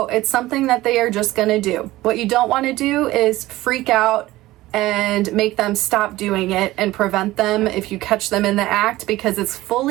it's something that they are just gonna do. What you don't want to do is freak out and make them stop doing it and prevent them if you catch them in the act, because it's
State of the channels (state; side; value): quieter; left; 17.2 dB